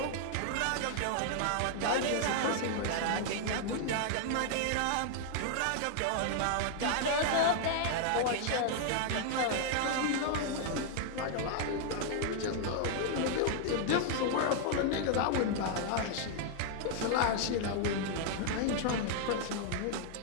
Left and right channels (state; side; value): different; both; correlation 0.00